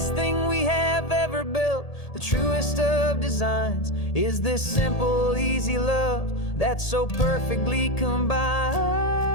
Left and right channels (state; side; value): late; right; 1.8 ms